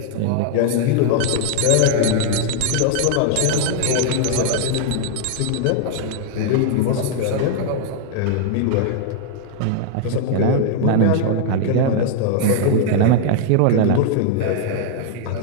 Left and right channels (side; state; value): both; different; correlation 0.00